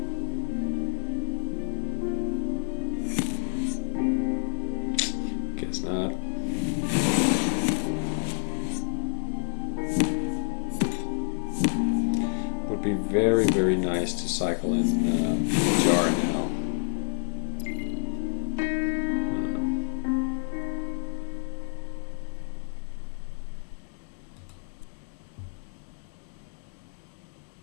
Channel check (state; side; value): silent; right; 59 dB below the other